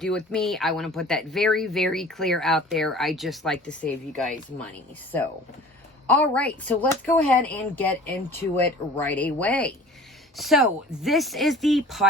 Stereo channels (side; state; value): both; normal; correlation 0.44